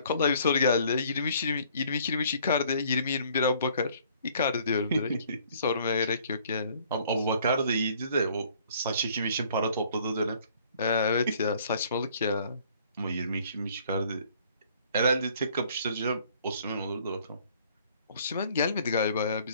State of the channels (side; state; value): both; inverted; correlation -0.59